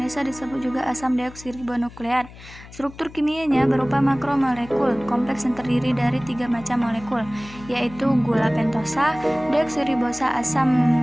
disebut juga asam deoksiribonukleat. Struktur kimianya berupa makromolekul kompleks yang terdiri dari 3 macam molekul, yaitu gula pentosa, deoksiribosa, asam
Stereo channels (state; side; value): noise; left; hum, 18 dB below the sound